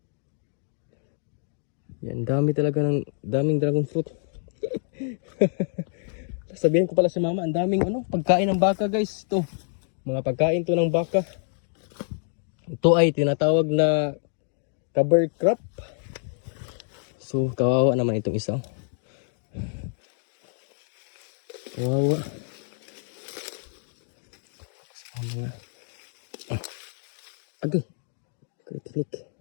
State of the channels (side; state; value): right; silent; 60 dB below the other